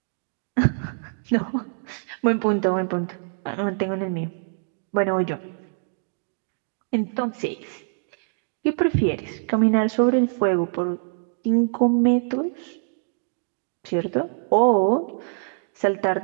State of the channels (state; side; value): silent; left; digital silence